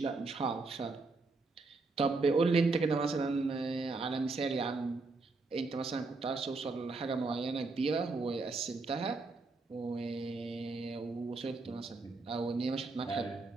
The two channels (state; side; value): quieter; left; 3.7 dB